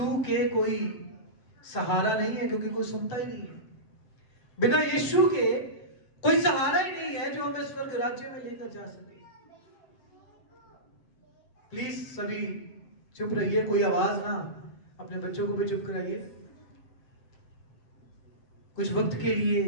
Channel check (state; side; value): late; right; 7.7 ms